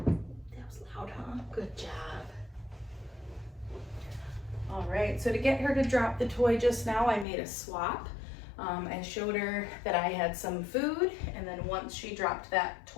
loud, huh? Good job. All right, so to get her to drop the toy just now, I made a swap. I showed her that I had some food, and then once she dropped that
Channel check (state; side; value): drops out; right; at 7.2 s